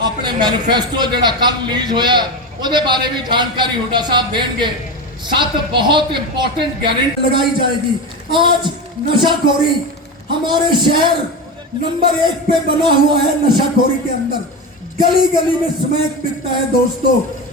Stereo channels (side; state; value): both; normal; correlation 0.20